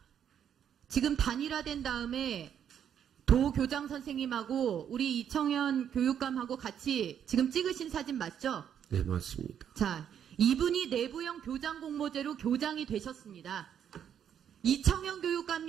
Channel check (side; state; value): left; quieter; 8.9 dB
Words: 지금 단일화된 다음에 도교장 선생님하고 우리 이청현 교육감하고 같이 지금 찍으신 사진 맞죠? 네, 맞습니다. 자, 이분이 내부형 교장 공모제로 교장이 되셨습니다. 이청현